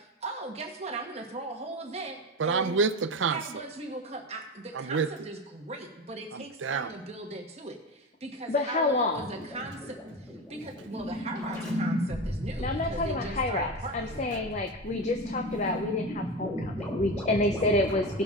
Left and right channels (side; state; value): both; normal; correlation 0.23